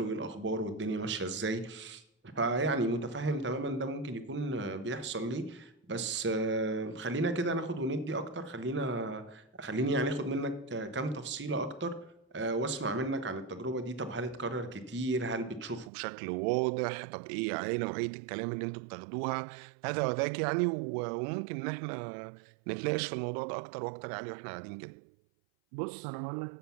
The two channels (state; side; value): drops out; left; at 15.9 s